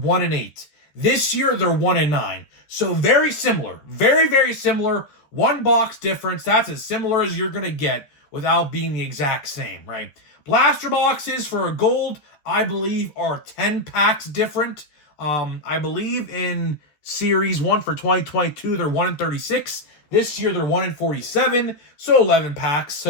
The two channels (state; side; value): late; right; 13 ms